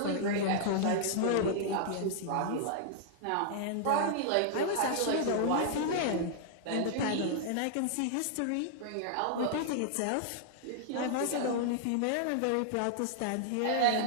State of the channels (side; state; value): both; different; correlation -0.01